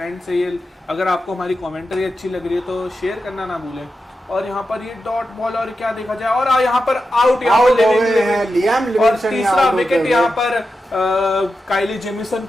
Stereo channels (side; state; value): both; normal; correlation 0.90